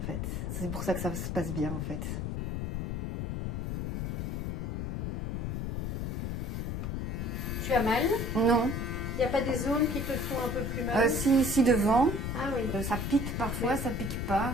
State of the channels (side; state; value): left; noise; rumble, 2 dB below the sound